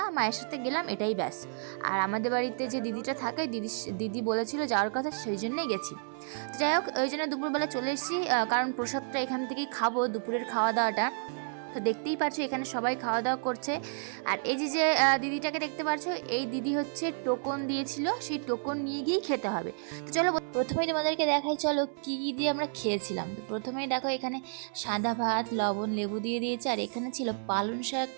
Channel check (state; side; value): silent; left; 57 dB below the other